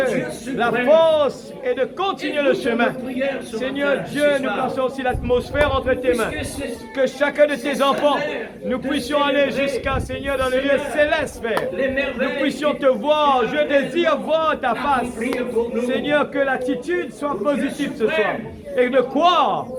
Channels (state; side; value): identical; both; correlation 1.00